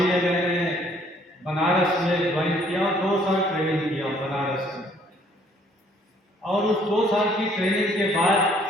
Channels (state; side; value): normal; both; correlation 0.62